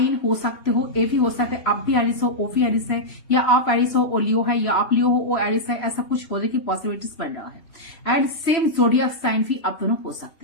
हो सकते हो, ए भी हो सकता है, आप भी एरिस हो, ओ भी एरिस है, या आप एरिस हो और लियो है, या आप लियो हो ओ एरिस है, ऐसा कुछ होने की पॉसिबिलिटीज बन रहा है। एंड सेम जोडियक साइन भी आप दोनों हो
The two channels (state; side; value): late; right; 3.0 ms